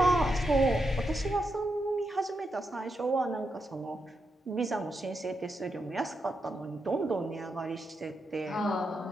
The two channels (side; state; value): both; normal; correlation 0.85